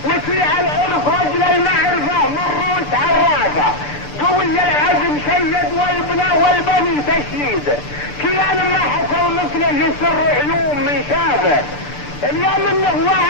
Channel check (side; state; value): right; late; 6.8 ms